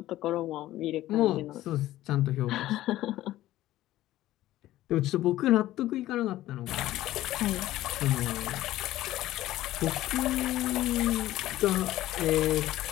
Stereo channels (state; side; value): quieter; right; 15.0 dB